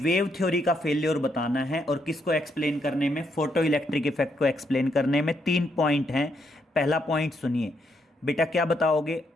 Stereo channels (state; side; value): normal; both; correlation 0.77